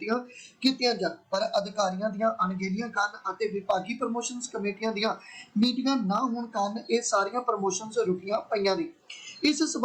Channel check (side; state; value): both; identical; correlation 1.00